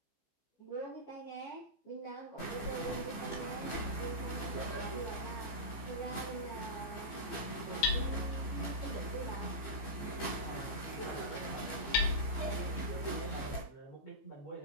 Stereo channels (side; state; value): right; late; 15 ms